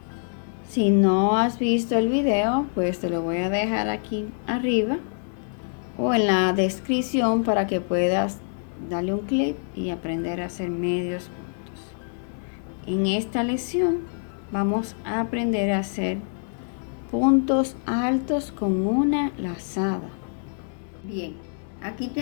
Si no has visto el video, pues te lo voy a dejar aquí arriba o en la descripción para que puedas darle un clic y aprender a hacer medios puntos. En esta lección vamos a aprender a hacer puntos altos con una lazada. Bien, aquí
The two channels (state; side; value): silent; right; 61 dB below the other